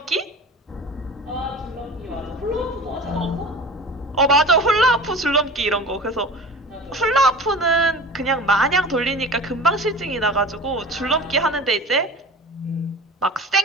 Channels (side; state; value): both; normal; correlation 0.37